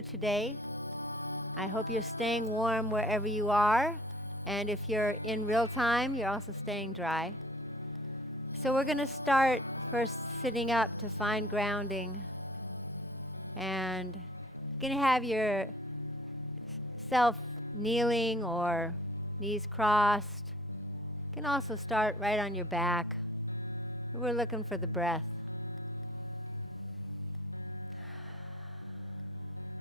today. I hope you're staying warm wherever you are, and if you're in real time, you're also staying dry. So we're going to start first sitting up to find grounding, and you're going to have yourself kneeling or knees crossed. You can also start right on your back. We're looking for the breath.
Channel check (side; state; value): both; normal; correlation 0.53